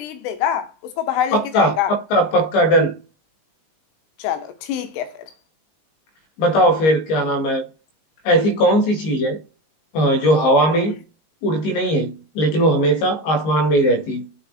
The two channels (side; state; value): right; late; 19 ms